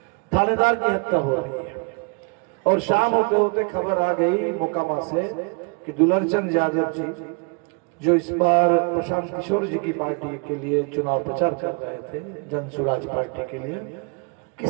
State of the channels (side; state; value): left; quieter; 33.7 dB